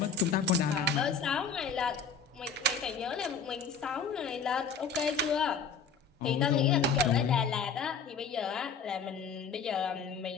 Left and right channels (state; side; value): quieter; right; 5.4 dB